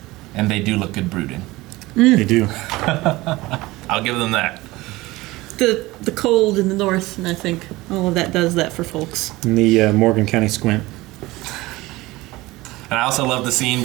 And they do look good brooding. They do. I'll give them that. The cold in the north, and I think all of that does that for folks. In the Morgan County Squint. And I also love the scene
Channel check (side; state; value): left; quieter; 19.9 dB